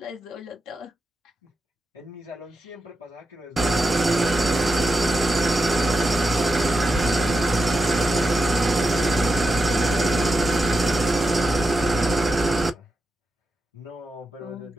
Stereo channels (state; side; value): normal; both; correlation 0.88